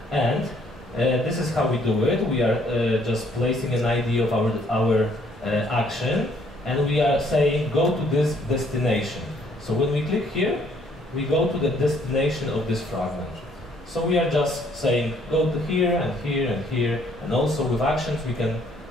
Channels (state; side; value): normal; both; correlation 0.65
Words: And this is how we do it. We are just placing an ID of our action, and we are saying go to this destination. So when we click here, we go to the destination of this fragment. So we are just saying go to here and here and here, and also with actions we can